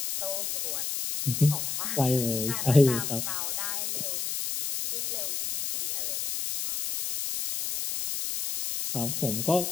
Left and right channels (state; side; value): noise; left; hiss, 2 dB below the sound